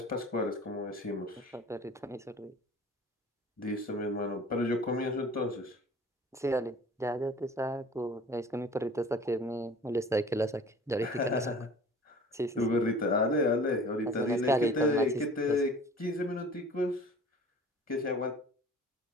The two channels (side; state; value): both; normal; correlation 0.45